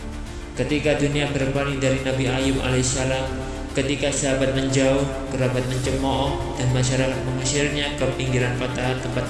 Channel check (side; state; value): both; identical; correlation 1.00